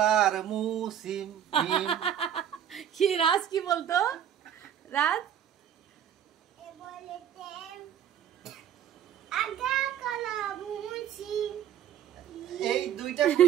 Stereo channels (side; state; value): left; quieter; 9.8 dB